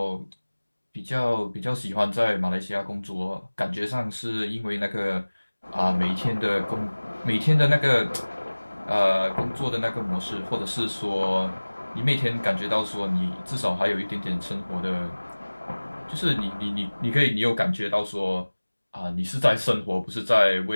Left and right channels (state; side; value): inverted; both; correlation -1.00